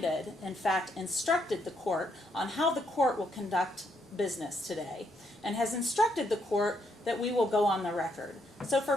in fact, instructed the court on how the court will conduct business today, and has instructed the court that we will go on the record. So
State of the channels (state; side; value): normal; both; correlation 0.75